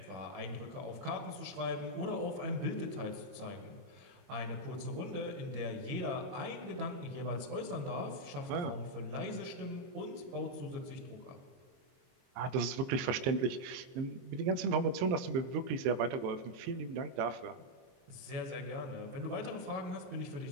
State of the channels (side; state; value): left; late; 23 ms